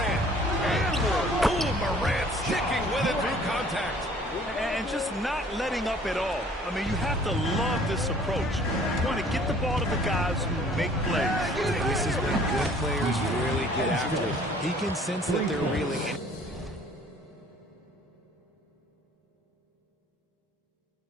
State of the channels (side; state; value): both; normal; correlation 0.54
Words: And Morant sticking with it through contact. And just not letting up at all. I mean, you have to love this approach. You want to get the ball to the guys who make plays. This is when good players really get after it. He can sense that they're reeling.